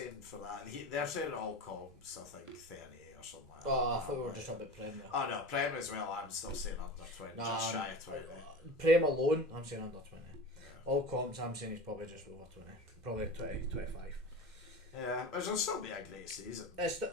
for that. They're saying all comps. I think 30 or something like that. Oh, I thought we were just on the Premier. Oh no, Prem as well. I'm still saying under 20, just shy of 20. Prem alone, I'm saying under 20. Yeah. All comps, I'm saying he's probably just over 20. Probably 20, 25. Yeah, but it'll still be a great season. It's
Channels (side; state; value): both; normal; correlation 0.31